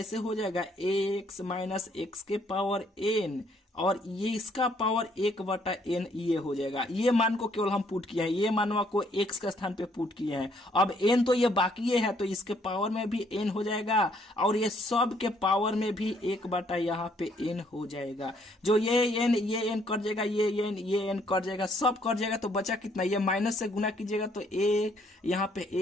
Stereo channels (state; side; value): normal; both; correlation 0.67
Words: हो जाएगा एक्स माइनस एक्स के पावर एन, और ये इसका पावर 1/n ये हो जाएगा। ये मान को केवल हम पुट किए हैं, ये मानवा को x के स्थान पे पुट किए हैं। अब n तो ये बाकी है, तो इसके पावर में भी n हो जाएगा, और ये सब के पावर में भी 1/ यहाँ पे n हो जाएगा। जो ये n कट जाएगा, ये n कट जाएगा, सब कट जाएगा। तो बचा कितना, ये माइनस से गुना कीजिएगा तो a यहाँ पे